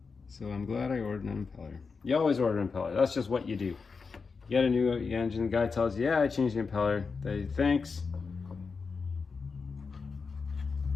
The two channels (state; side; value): quieter; right; 4.9 dB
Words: So I'm glad I ordered an impeller. You always order an impeller. That's just what you do. You get a new engine, the guy tells you, yeah, I changed the impeller. They thanks.